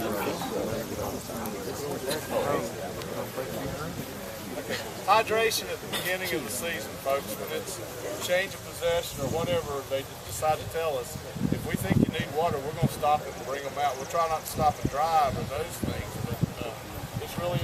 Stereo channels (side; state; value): both; identical; correlation 1.00